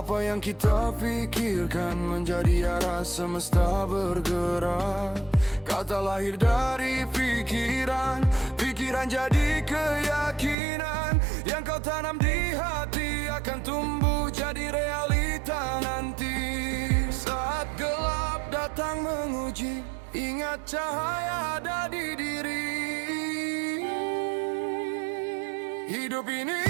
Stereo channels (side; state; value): left; drops out; at 10.6 s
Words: yang kita pikirkan menjadi arah semesta bergerak. Kata lahir dari pikiran Pikiran jadi keyakinan, yang kau tanam di hati akan tumbuh jadi realita nanti. Saat gelap datang menguji, ingat cahaya ada di diri. Hidup ini